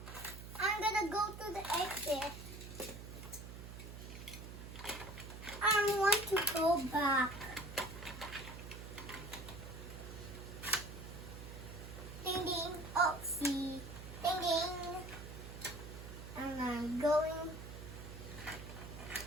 I'm gonna go to the exit. I want to go back. Ding ding. Oh, see. Ding ding. And I'm going.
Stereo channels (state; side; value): noise; right; hum, 11 dB below the sound